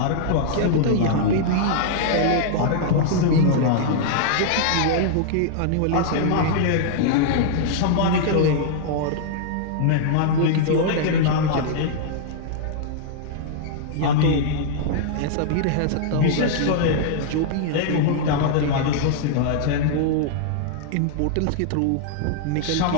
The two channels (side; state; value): both; different; correlation -0.01